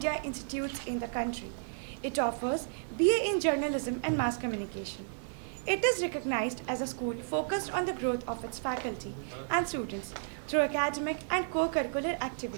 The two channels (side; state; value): left; silent; digital silence